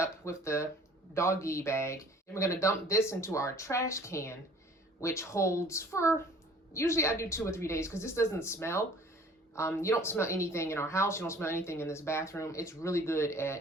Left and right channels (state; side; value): normal; both; correlation 0.51